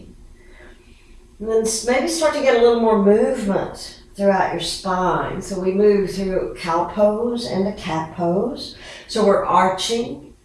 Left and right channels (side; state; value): both; identical; correlation 1.00